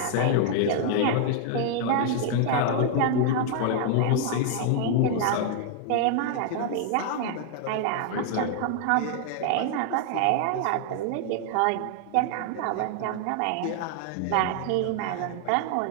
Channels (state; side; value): different; both; correlation 0.00